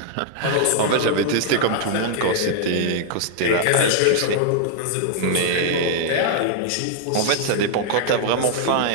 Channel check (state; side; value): different; both; correlation -0.01